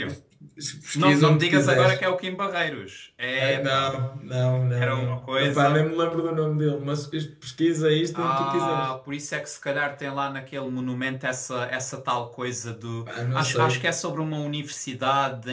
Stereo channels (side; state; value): both; identical; correlation 1.00